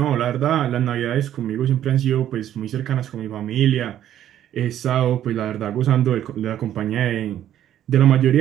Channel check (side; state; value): left; quieter; 11.3 dB